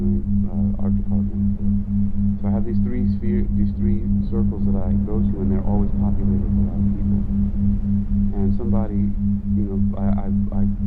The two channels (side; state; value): both; identical; correlation 1.00